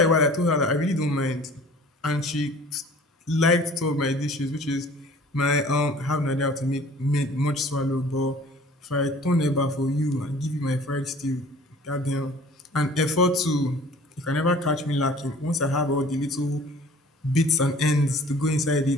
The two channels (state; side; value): normal; both; correlation 0.49